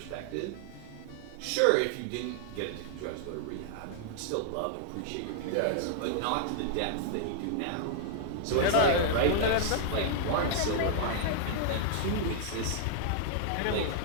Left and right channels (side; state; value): both; different; correlation -0.01